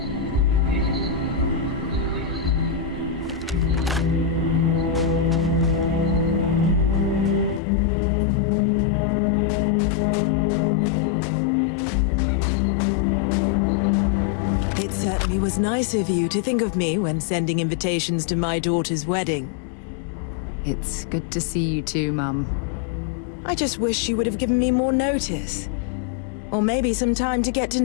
It certainly was nice of you to think of me when sending invitations to my daughter's wedding. It's good to see you too, Mum. I just wish you would have given me more notice. Or maybe some time to get to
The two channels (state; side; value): drops out; right; at 7.6 s